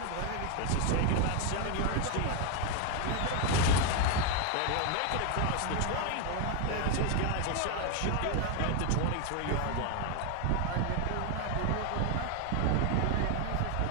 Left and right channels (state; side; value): different; both; correlation 0.01